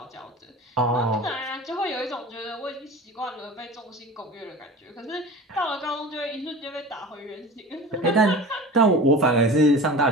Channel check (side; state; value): both; normal; correlation 0.36